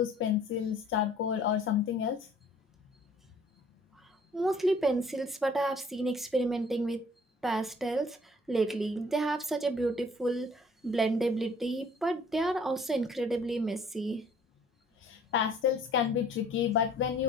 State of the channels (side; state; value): both; normal; correlation 0.55